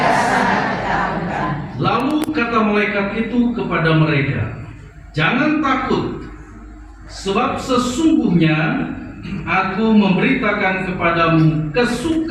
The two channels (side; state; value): both; identical; correlation 1.00